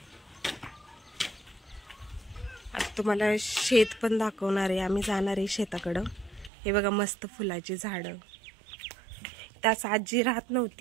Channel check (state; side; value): drops out; left; at 6.5 s